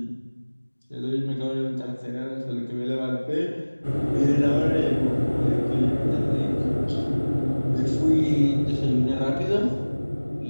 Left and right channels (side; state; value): both; inverted; correlation -1.00